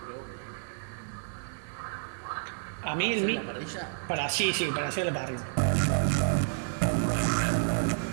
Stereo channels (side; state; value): left; silent; digital silence